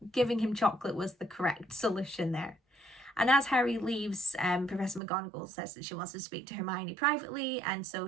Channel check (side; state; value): left; drops out; at 5.0 s